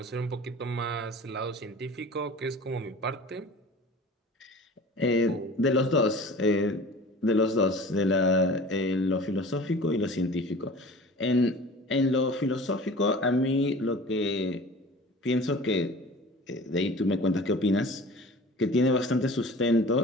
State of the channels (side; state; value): both; normal; correlation 0.41